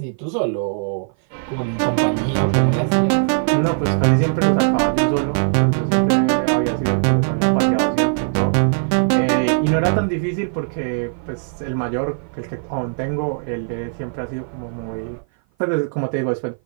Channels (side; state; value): left; silent; 56 dB below the other